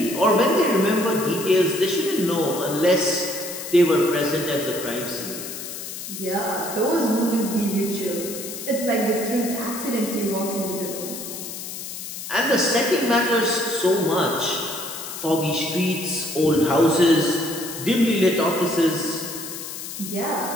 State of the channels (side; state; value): left; noise; hiss, 9 dB below the sound